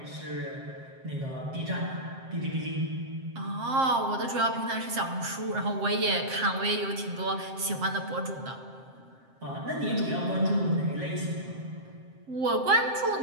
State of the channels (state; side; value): late; left; 7.6 ms